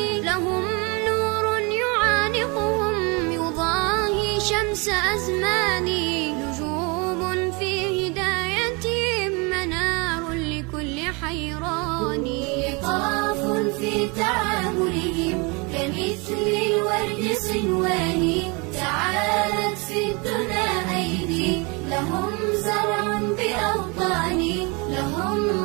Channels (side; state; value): left; quieter; 29.5 dB